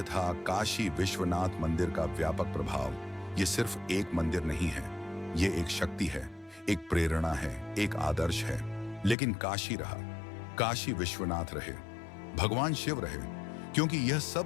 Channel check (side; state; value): right; drops out; at 9.2 s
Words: था काशी विश्वनाथ मंदिर का व्यापक प्रभाव। ये सिर्फ एक मंदिर नहीं है, ये एक शक्ति है, एक प्रेरणा है, एक आदर्श है। लेकिन काशी रहा, काशी विश्वनाथ रहे, भगवान शिव रहे, क्योंकि यह